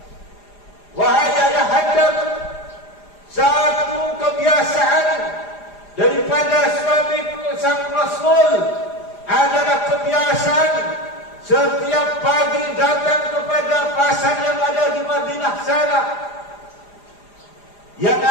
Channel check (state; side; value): late; right; 4.9 ms